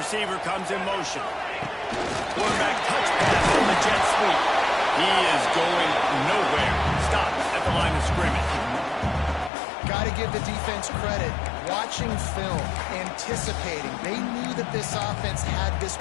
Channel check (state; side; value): drops out; right; at 9.5 s